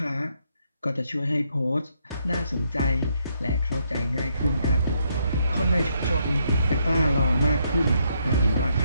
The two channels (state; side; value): inverted; both; correlation -0.76